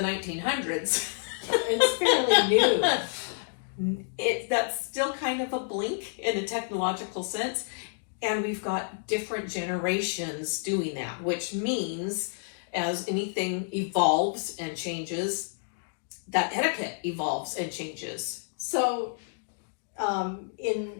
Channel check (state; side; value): silent; right; digital silence